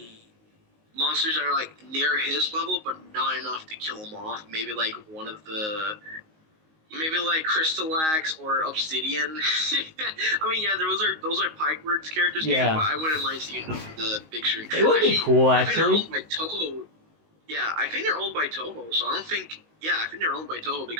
monsters that are like near his level, but not enough to kill him off. Maybe like one of the, maybe like Crystalax or Obsidian. I mean, yeah, those are Pikeworks characters games, Yeah. but I wouldn't mind seeing them in the big screen. It would be cool, I think they're actually. owned by Toho. Yeah, I think they're owned by Toho, so I don't think. Yeah, I think they're owned by Toho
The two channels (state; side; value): late; left; 19 ms